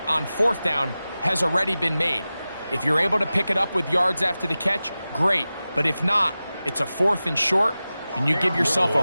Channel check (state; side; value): inverted; both; correlation -0.95